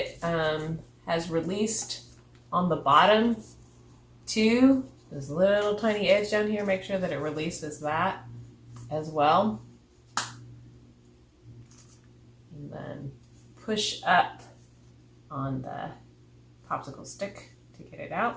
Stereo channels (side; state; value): both; identical; correlation 1.00